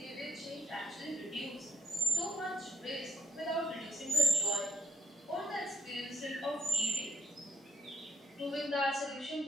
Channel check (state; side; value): normal; both; correlation 0.72